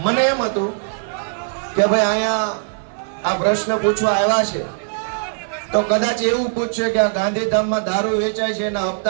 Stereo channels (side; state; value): left; silent; 57 dB below the other